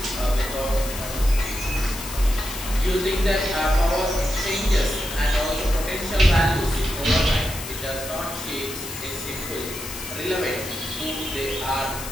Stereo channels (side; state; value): left; noise; hiss, 9 dB below the sound